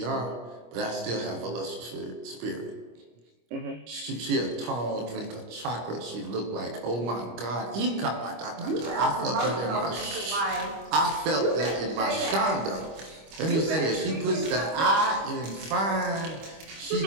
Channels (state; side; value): late; left; 25 ms